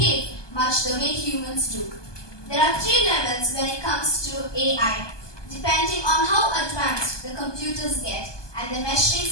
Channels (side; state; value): right; late; 1.2 ms